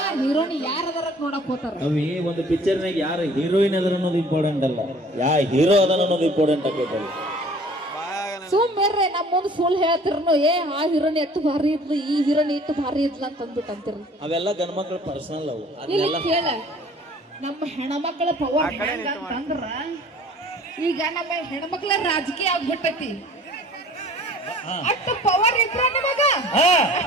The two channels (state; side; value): normal; both; correlation 0.51